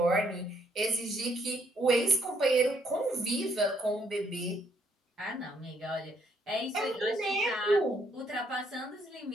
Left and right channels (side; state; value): both; normal; correlation 0.69